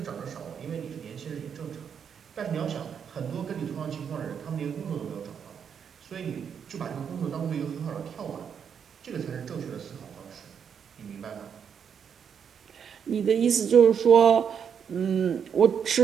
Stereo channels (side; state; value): left; quieter; 7.5 dB